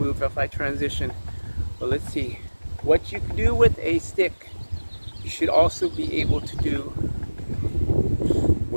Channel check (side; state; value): both; inverted; correlation -1.00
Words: if I transition, but let's see. What you can do with a stick, you should also be able to do